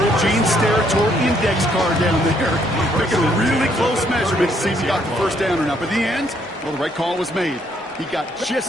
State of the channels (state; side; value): normal; both; correlation 0.69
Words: Gene Steratore index card down there. Making a really close measurement to see if he got the first down or not. But in the end, well, the right call was made. He got